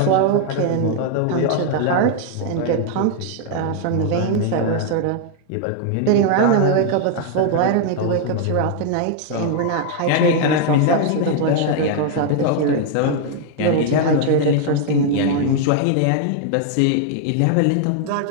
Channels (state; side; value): different; both; correlation 0.00